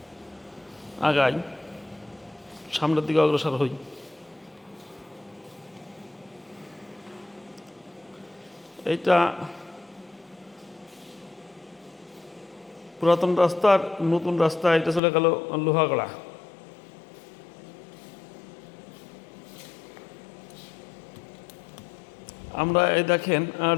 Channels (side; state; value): right; drops out; at 15.0 s